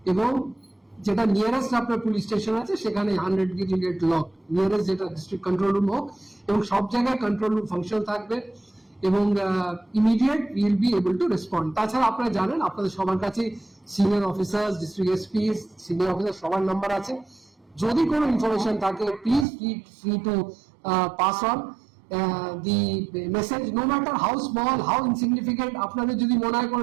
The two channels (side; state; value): left; drops out; at 19.5 s